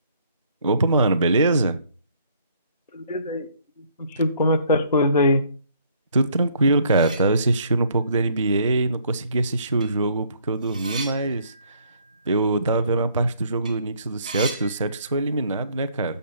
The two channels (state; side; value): inverted; both; correlation -0.63